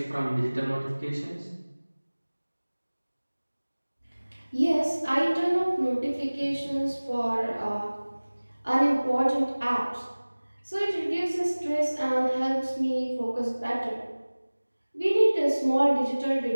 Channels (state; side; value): inverted; both; correlation -1.00